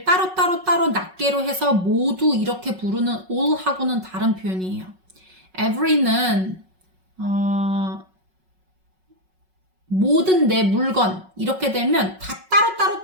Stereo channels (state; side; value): late; left; 5.4 ms